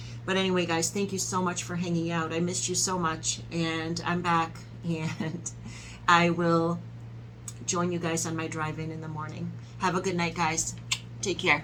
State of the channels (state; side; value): identical; both; correlation 1.00